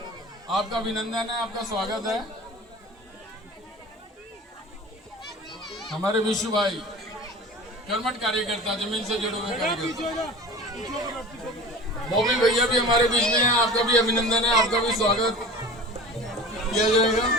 आपका अभिनंदन है, आपका स्वागत है। हमारे विशु भाई कर्मठ कार्यकर्ता, जमीन से जुड़े हुए कार्यकर्ता। बॉबी भैया भी हमारे बीच में हैं, आपका भी अभिनंदन है, आपका भी स्वागत किया जाएगा।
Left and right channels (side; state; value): both; normal; correlation 0.37